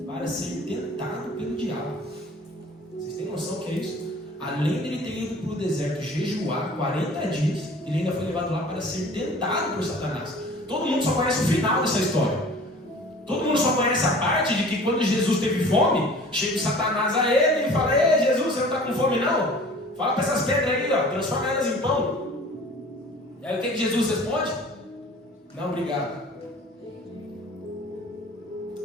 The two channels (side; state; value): both; normal; correlation 0.46